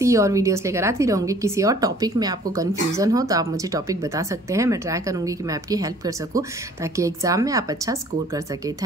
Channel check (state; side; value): normal; both; correlation 0.54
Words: ही और वीडियोस लेकर आती रहूँगी। किसी और टॉपिक में आपको कन्फ्यूज़न हो तो आप मुझे टॉपिक बता सकते हैं। मैं ट्राई करूँगी कि मैं आपकी हेल्प कर सकूँ, ताकि एग्ज़ाम में आप अच्छा स्कोर कर सकें।